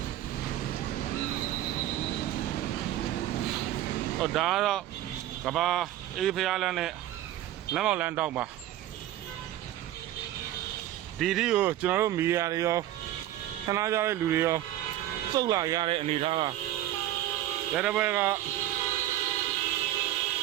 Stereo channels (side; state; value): left; quieter; 13.5 dB